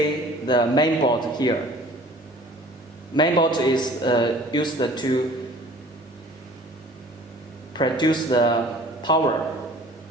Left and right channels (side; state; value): both; normal; correlation 0.49